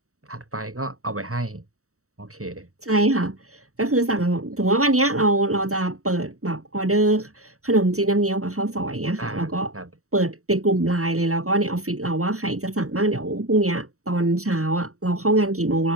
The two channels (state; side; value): late; left; 0.64 ms